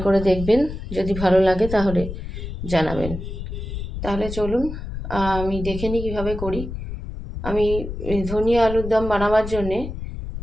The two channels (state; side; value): noise; left; rumble, 7 dB below the sound